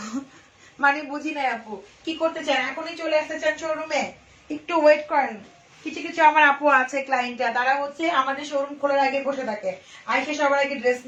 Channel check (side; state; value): both; identical; correlation 1.00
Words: মানে বুঝি নাই আপু, কি করতে চান, এখনই চলে আসতে চান শোরুমে? একটু ওয়েট করেন, কিছু কিছু আমার আপু আছে ক্লায়েন্টরা, তারা হচ্ছে আমাদের শোরুম খোলার আগে বসে থাকে, আইসে সবার আগে ড্রেস